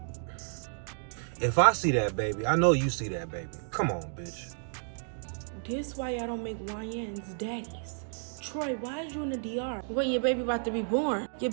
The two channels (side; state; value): left; silent; digital silence